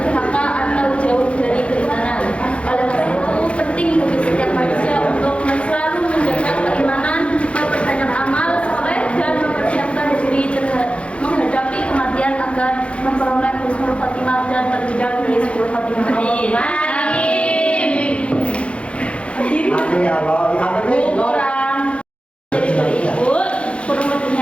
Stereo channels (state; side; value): late; right; 0.060 ms